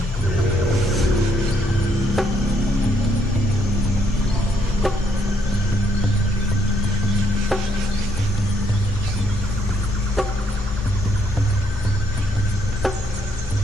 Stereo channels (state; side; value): normal; both; correlation 0.72